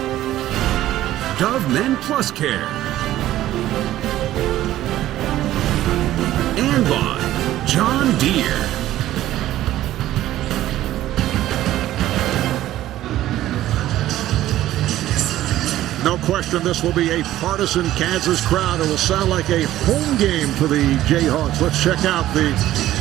Dove Men Plus Care. And by John Deere. No question this will be a partisan Kansas crowd. It will sound like a home game for the Jayhawks. Let's check out the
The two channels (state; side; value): quieter; left; 14.0 dB